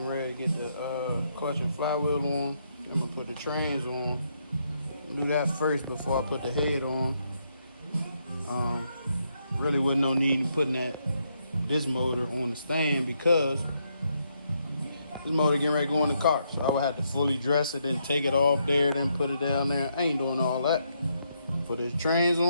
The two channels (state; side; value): inverted; both; correlation -0.77